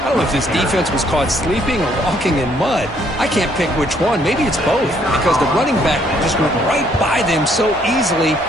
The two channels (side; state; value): both; normal; correlation 0.67